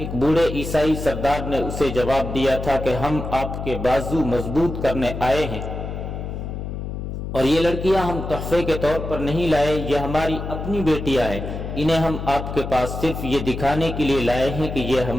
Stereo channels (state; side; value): noise; left; hum, 6 dB below the sound